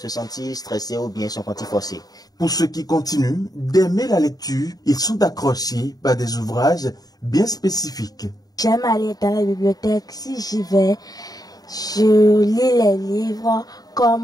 sentir stressé ou bien se sentir forcé. Pour ceux qui continuent d'aimer la lecture, ils sont accrochés par des ouvrages bien spécifiques. J'aime aller dans la bibliothèque. Si j'y vais, je lis les livres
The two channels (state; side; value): late; right; 0.18 ms